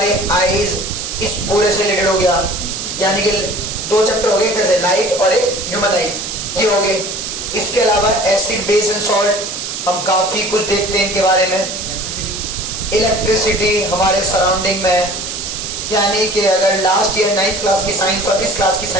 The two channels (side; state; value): right; noise; hiss, 6 dB below the sound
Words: आईज इस पूरे से रिलेटेड हो गया। यानी कि 2 चैप्टर हो गए, एक जैसे लाइट और एक ह्यूमन आईज, ये हो गए। इसके अलावा एसिड, बेस एंड सॉल्ट, हम काफी कुछ देखते हैं इनके बारे में। इलेक्ट्रिसिटी हमारे सराउंडिंग में, यानी कि अगर लास्ट ईयर 9th क्लास की साइंस और इस क्लास की